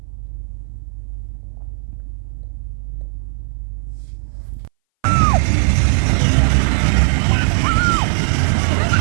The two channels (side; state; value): left; silent; 61 dB below the other